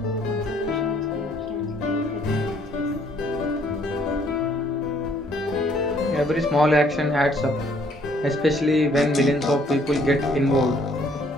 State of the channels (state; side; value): normal; both; correlation 0.64